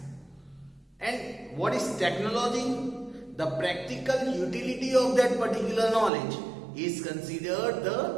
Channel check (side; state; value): left; drops out; at 6.1 s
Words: And what is technology? The practical utility of that particular knowledge is considered